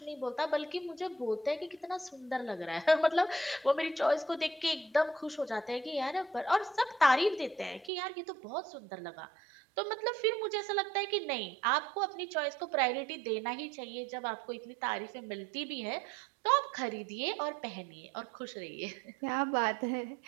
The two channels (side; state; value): left; drops out; at 7.9 s